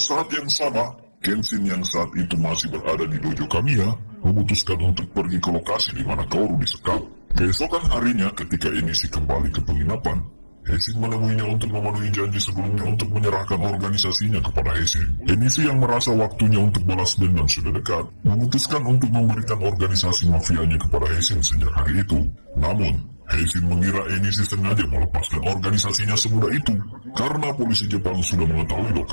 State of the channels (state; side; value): inverted; both; correlation -1.00